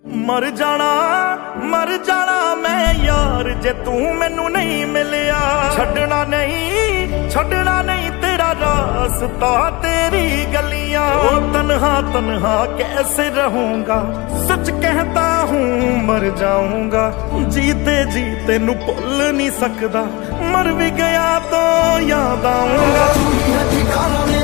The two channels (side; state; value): right; quieter; 24.4 dB